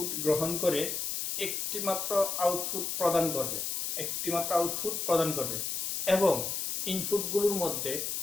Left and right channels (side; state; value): left; noise; hiss, 2 dB below the sound